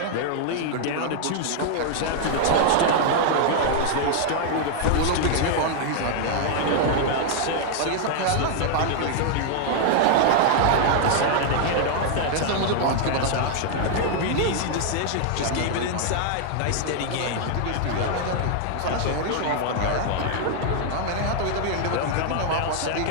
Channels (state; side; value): different; both; correlation 0.00